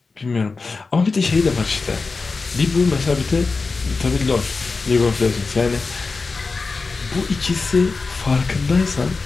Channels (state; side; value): quieter; right; 4.2 dB